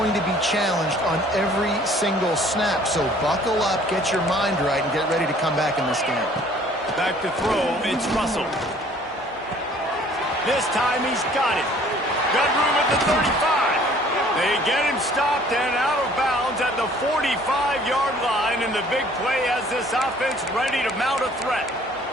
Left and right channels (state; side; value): normal; both; correlation 0.55